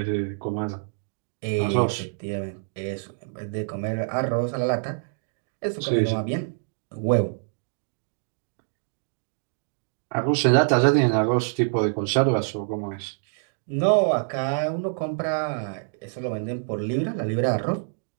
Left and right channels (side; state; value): left; silent; digital silence